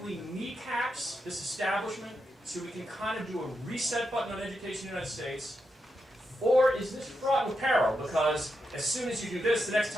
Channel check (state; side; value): normal; both; correlation 0.85